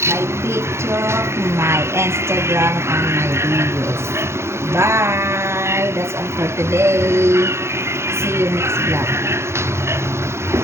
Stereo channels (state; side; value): late; left; 0.13 ms